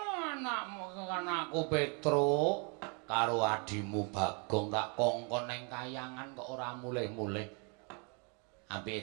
Anakmu kan aku Petruk karo adimu Bagong tak kongkon ning kayangan kok ora mulih-mulih.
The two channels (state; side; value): quieter; left; 35.6 dB